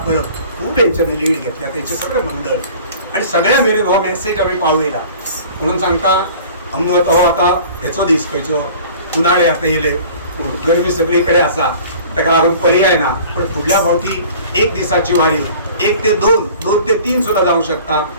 परब खूप यांच्याने लीड घेतल्या. त्यांचे सगळे मंडळ आणि सगळ्या मेरेन हो मेसेज आम्ही पावयला. म्हणून सांगता आमनो आता हेचो दीस खंयचो उन्हाळे आता येयले, गरमी सगळीकडे आसा, ताका लागून पर्याय ना. पण फुडल्या फावटी 1 दिसाची वारी 1 ते 2, 2 ते 3 सुद्धा जाऊ शकता.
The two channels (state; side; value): inverted; both; correlation -0.46